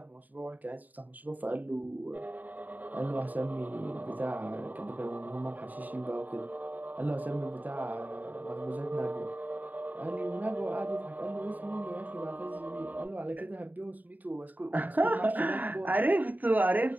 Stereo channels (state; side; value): late; left; 0.083 ms